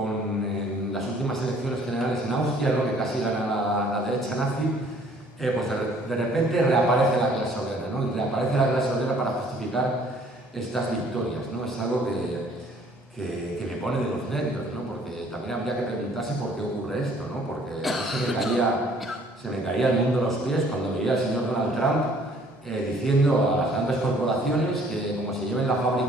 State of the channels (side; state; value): both; normal; correlation 0.58